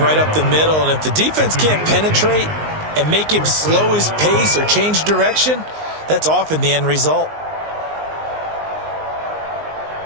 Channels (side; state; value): left; late; 19 ms